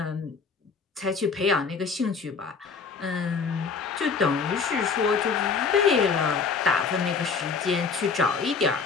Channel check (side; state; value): right; quieter; 5.2 dB